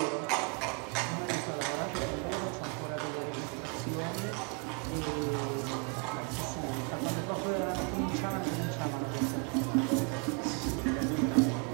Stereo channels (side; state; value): left; quieter; 34.5 dB